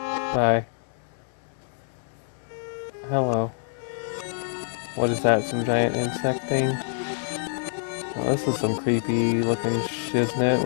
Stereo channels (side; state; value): right; silent; 61 dB below the other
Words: Bye. Hello. What is that, some giant insect thing? Oh, this is some creepy looking shiznit